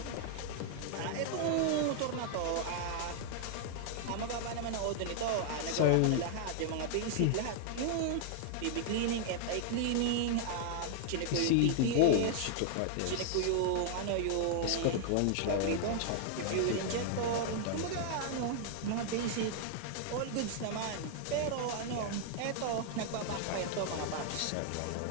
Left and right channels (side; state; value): both; different; correlation 0.00